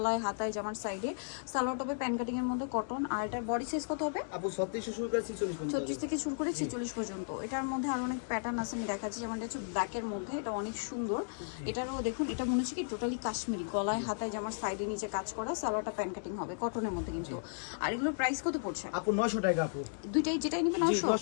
হাতায় জামার সাইডে সালোয়ার টপে প্যান কাটিং এর মধ্যে কটন। আর এটার বডি সাইজ কত হবে আপু 36 শুরু করে 46 পর্যন্ত, 36 থেকে শুরু করে 46 পর্যন্ত। এটার মধ্যে আরো অনেক প্যাটার্ন আছে, আমি দেখাচ্ছি। যেমন এটা হচ্ছে ব্ল্যাকের মধ্যে, এটা অনেক সুন্দর। এটারও দেখুন, এটা মনে হচ্ছে কি টোটালি কাশ্মীরি, গলায় হাতায় জামার সাইডে নিচে কাজ করা, সালোয়ারটা প্যান কাটিং হবে কটনের মধ্যে কিন্তু। আর এগুলোর প্রাইস কত পড়ছে আপু? 900 টাকা আপু। দুইটাই যেটাই নিবে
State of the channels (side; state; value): right; silent; digital silence